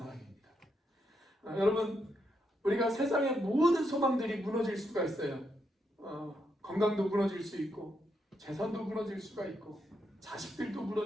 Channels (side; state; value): both; normal; correlation 0.80